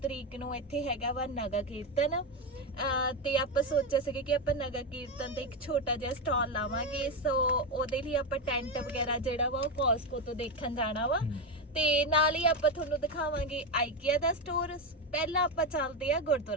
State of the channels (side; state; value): both; normal; correlation 0.11